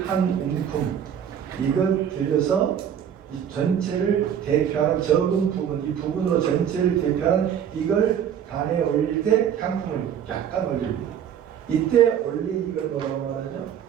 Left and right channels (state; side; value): quieter; left; 9.0 dB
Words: 한 움큼 이걸 들여서 이 전체를 대표하는 적은 부분, 이 부분으로 전체를 대표하는 이걸 단에 올릴 때 향품을 약간 올립니다. 이때 올린 이걸 뭐라고 말하죠?